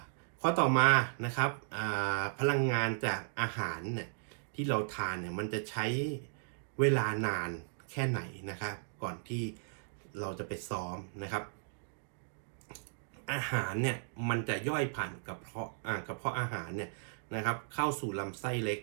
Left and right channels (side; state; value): left; silent; digital silence